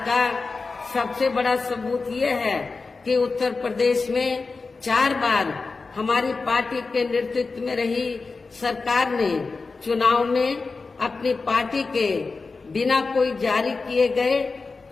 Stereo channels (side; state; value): right; quieter; 4.1 dB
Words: का सबसे बड़ा सबूत ये है कि उत्तर प्रदेश में 4 बार हमारी पार्टी के नेतृत्व में रही सरकार ने चुनाव में अपनी पार्टी के बिना कोई जारी किए गए